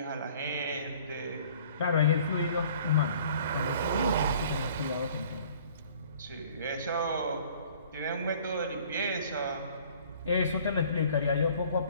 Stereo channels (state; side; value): inverted; both; correlation -0.53